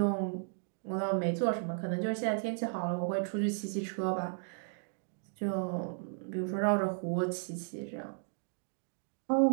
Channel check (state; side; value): silent; left; digital silence